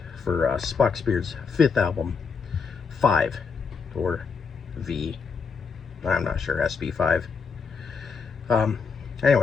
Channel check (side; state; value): right; quieter; 5.4 dB